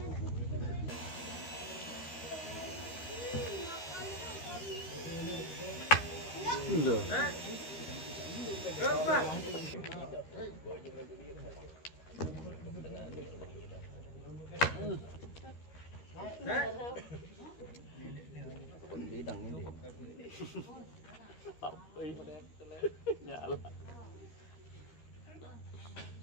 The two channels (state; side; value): late; right; 13 ms